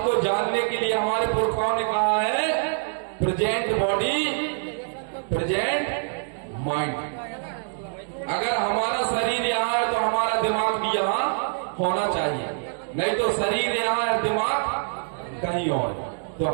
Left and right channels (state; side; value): silent; left; digital silence